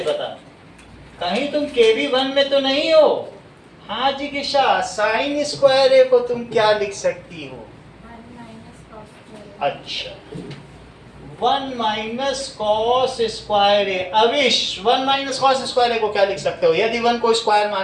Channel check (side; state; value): both; identical; correlation 1.00